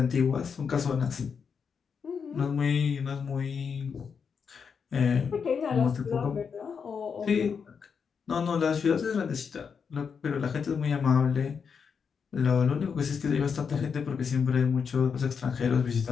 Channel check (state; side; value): quieter; right; 6.3 dB